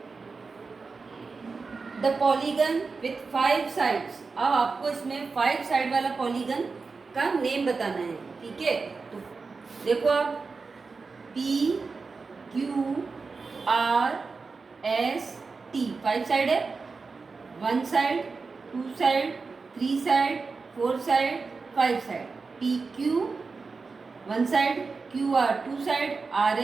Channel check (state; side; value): quieter; left; 4.4 dB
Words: the polygon with 5 sides. अब आपको इसमें 5 साइड वाला पॉलीगन का नेम बताना है। ठीक है, तो देखो आप, P Q R S T 5 side है, 1 side, 2 side, 3 side, 4 side, 5 side. P Q 1 side, Q R 2 side, R